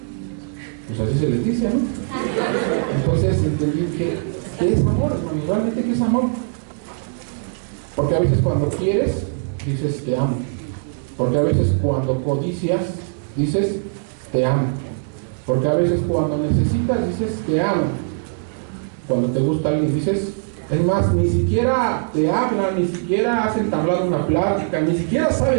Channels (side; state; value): left; silent; digital silence